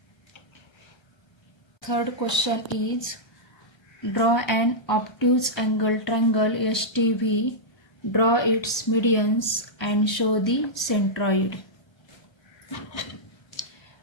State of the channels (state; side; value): late; right; 1.3 ms